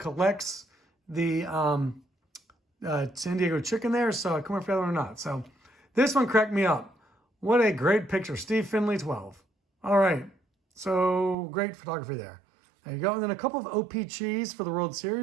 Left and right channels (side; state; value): left; drops out; at 11.4 s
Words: the San Diego chicken there, so I couldn't remember if you had one or not. So this one cracked me up. What a great picture. Steve Finley, 12. All right. So great photography there. There you go. And then a couple of OPGs for the World